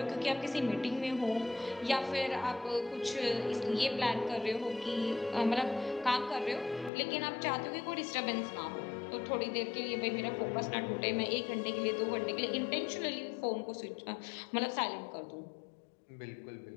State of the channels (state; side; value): drops out; right; at 6.9 s